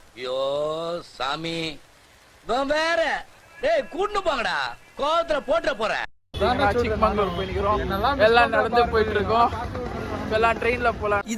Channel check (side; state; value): both; identical; correlation 1.00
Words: ஐயோ சாமி நான் வேற டேய் கூட்டு போங்கடா கோவத்துல போட்ற போறேன். சிக்மங்களூர் போயிக்கிறோம். எல்லாம் நடந்து போயிட்டு இருக்கோம். எல்லாம் ட்ரெயின்ல போலாம்.